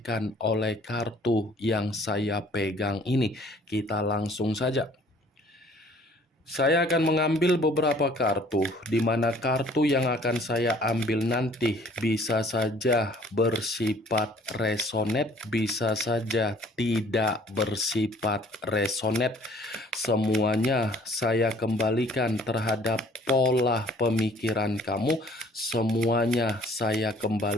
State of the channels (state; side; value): normal; both; correlation 0.56